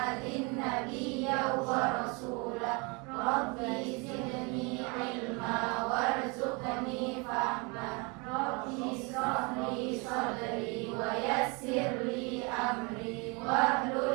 nabiyya wa rasula. Rabbi zidni ilma warzuqni fahma. Rabbi ishrah li sadri wa yassir li amri wahlul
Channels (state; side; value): quieter; left; 29.9 dB